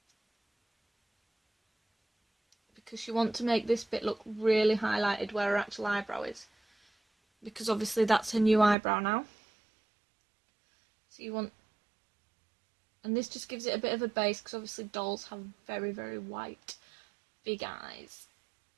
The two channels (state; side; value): drops out; left; at 8.8 s